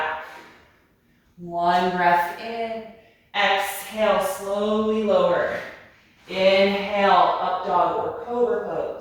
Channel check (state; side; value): identical; both; correlation 1.00